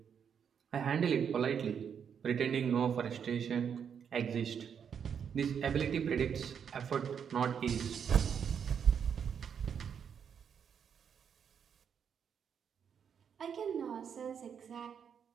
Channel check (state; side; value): quieter; left; 7.5 dB